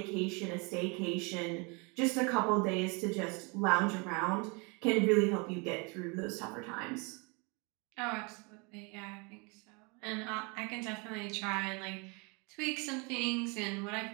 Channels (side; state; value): left; quieter; 30.9 dB